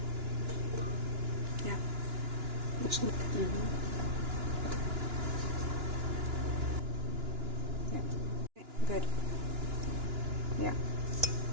Yeah. Yeah. Good. Yeah.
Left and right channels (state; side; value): late; left; 2.9 ms